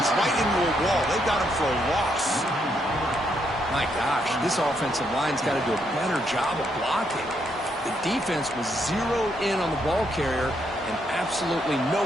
right into a wall. They got him for a loss. My gosh, this offensive line's got to do a better job of blocking. The defense was zeroed in on the ball carrier and absolutely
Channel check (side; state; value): both; normal; correlation 0.76